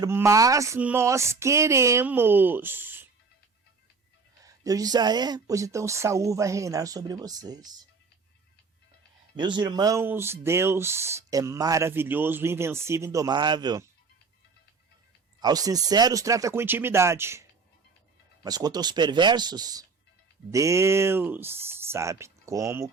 mas nós queremos. Deus disse: ah, é? Pois então Saul vai reinar sobre vocês. Meus irmãos, Deus é maravilhoso, invencível, indomável. Aos sinceros trata com intimidade. Mas quanto aos perversos, Deus sabe como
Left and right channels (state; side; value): quieter; left; 4.7 dB